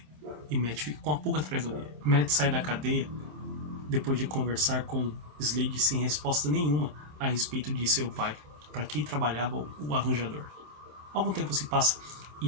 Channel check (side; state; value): left; late; 27 ms